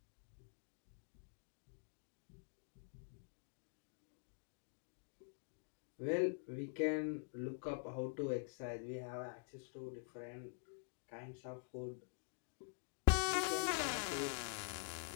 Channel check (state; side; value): silent; right; digital silence